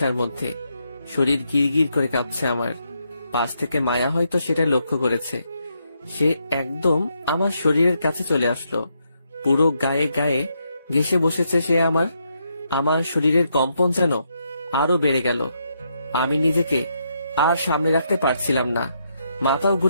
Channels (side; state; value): both; inverted; correlation -0.79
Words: মধ্যে, শরীর গিরগির করে কাঁপছে আমার। পাশ থেকে মায়া হয়তো সেটা লক্ষ্য করেছে। সে একদম আমার শরীরের কাছে চলে আসলো, পুরো গায়ে গায়ে ঘেঁষে বসেছে সে আমার শরীরের কম্পন যেন আরো বেড়ে গেল। আমি নিজেকে আর সামনে রাখতে পারছিলাম না, মাথাও